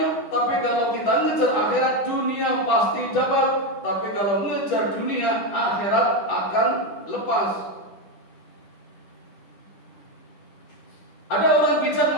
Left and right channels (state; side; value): late; right; 10 ms